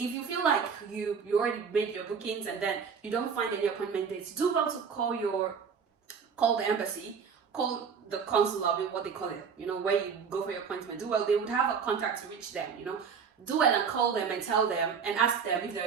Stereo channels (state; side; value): quieter; left; 6.3 dB